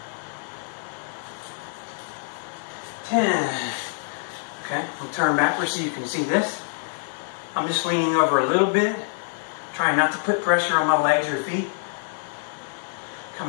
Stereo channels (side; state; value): right; silent; digital silence